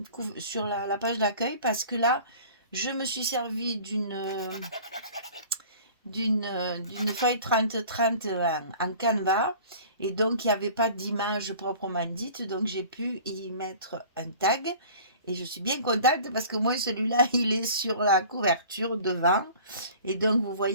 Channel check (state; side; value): inverted; both; correlation -0.45